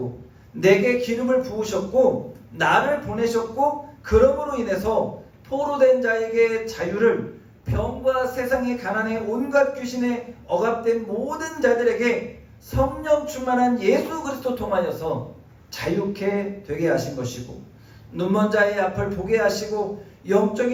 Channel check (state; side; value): identical; both; correlation 1.00